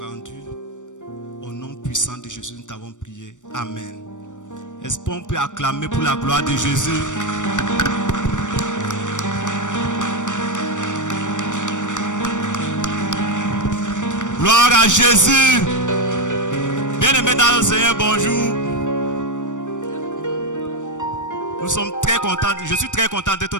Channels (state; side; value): late; right; 0.86 ms